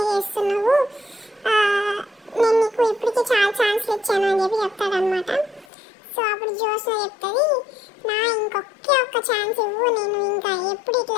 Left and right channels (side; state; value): right; drops out; at 5.7 s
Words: చేస్తున్నావు, నేను నీకు ఇప్పటికీ చాలా ఛాన్స్లు ఇచ్చాను అని చెప్పి చెప్తాడనమాట. సో అప్పుడు జోస్న చెప్తుంది, నా ఇంకొకే ఒక్క ఛాన్స్ ఇవ్వు, నేను ఇంకా ఎప్పుడు